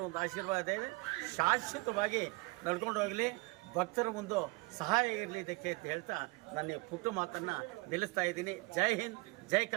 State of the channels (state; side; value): quieter; left; 26.3 dB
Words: ಒಂದು ಆಶೀರ್ವಾದ ಇದೆ, ಶಾಶ್ವತವಾಗಿ ನಡ್ಕೊಂಡು ಹೋಗಲಿ, ಭಕ್ತರ ಒಂದು ಸಹಾಯ ಇರಲಿ ಇದಕ್ಕೆ ಅಂತ ಹೇಳ್ತಾ ನನ್ನ ಪುಟ್ಟ ಮಾತನ್ನು ನಿಲ್ಲಿಸ್ತಾ ಇದ್ದೀನಿ. ಜೈ ಹಿಂದ್, ಜೈ